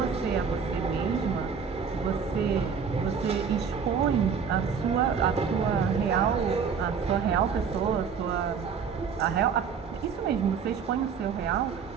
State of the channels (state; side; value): quieter; left; 6.4 dB